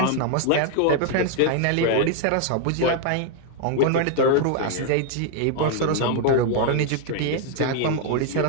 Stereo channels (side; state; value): both; different; correlation 0.00